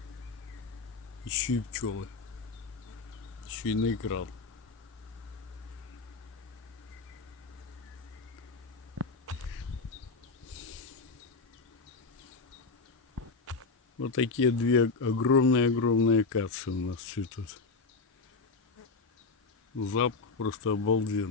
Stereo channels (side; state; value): right; quieter; 4.1 dB